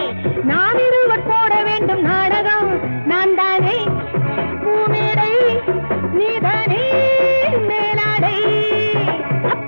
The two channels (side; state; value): both; inverted; correlation -1.00